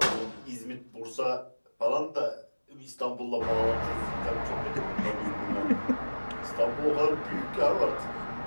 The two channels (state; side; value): inverted; both; correlation -1.00